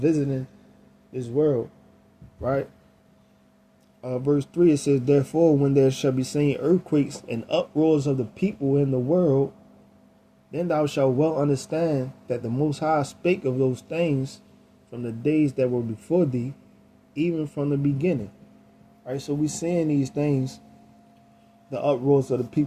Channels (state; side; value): identical; both; correlation 1.00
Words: this world, right? Verse 3, it says, "Therefore, when there shall be seen earthquakes and uproars of the people in the world, then thou shalt well understand that the Most High spake of those things from the days that were before thee, even from the beginning." Right, so we seeing these things, the uproars of the